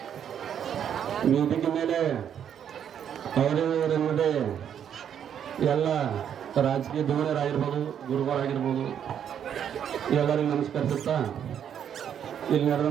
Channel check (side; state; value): left; quieter; 8.9 dB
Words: ವೇದಿಕೆ ಮೇಲೆ ಅವರೇ ಎಲ್ಲ ರಾಜಕೀಯ ಧುರೀಣರಾಗಿರ್ಬೋದು, ಗುರುಗಳಾಗಿರ್ಬೋದು, ಎಲ್ಲರಿಗೂ ನಮಸ್ಕರಿಸುತ್ತಾ, ಇಲ್ಲಿ